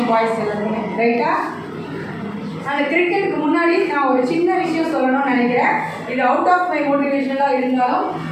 பாய்ஸ் எல்லாருமே, ரைட்டா? அந்த கிரிக்கெட்டுக்கு முன்னாடி நான் ஒரு சின்ன விஷயம் சொல்லணும்னு நினைக்கிறேன். இது அவுட் ஆஃப் மை மோட்டிவேஷனலாக இருந்தாலும்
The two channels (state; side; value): identical; both; correlation 1.00